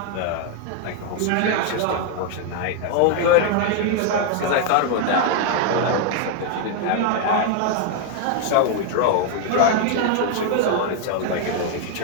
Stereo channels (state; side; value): different; both; correlation 0.01